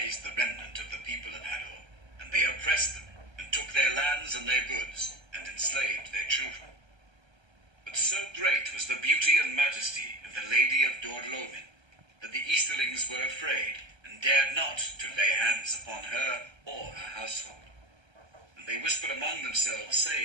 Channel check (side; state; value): left; late; 1.3 ms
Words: the remnant of the people of Hador, and they oppressed them, and took their lands and their goods, and enslaved their children. But so great was the beauty and majesty of the Lady of Dor-Lomin that the Easterlings were afraid, and dared not to lay hands upon her or her household. And they whispered among themselves,